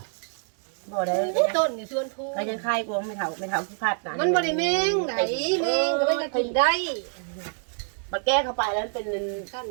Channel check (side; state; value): left; silent; digital silence